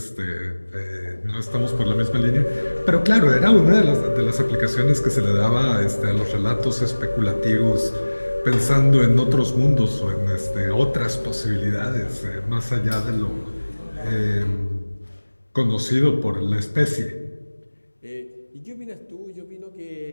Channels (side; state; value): both; inverted; correlation -1.00